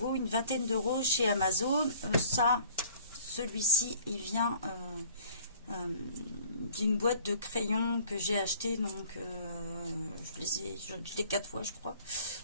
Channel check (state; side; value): inverted; both; correlation -0.52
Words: une vingtaine d'euros chez Amazon. Celui-ci, il vient d'une boîte de crayons que j'ai acheté, donc je l'ai 4 fois je crois,